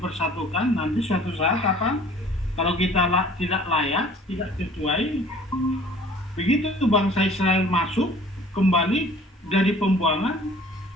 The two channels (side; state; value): both; normal; correlation 0.51